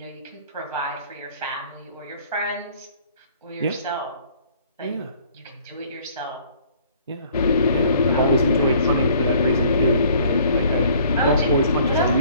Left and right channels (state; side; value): inverted; both; correlation -0.56